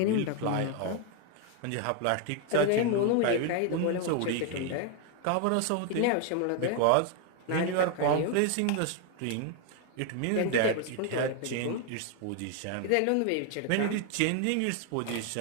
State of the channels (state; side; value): different; both; correlation 0.01